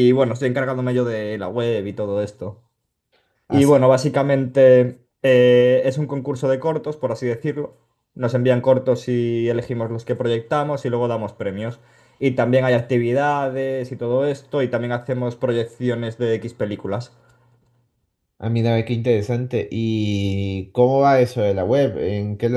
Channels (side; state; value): both; identical; correlation 1.00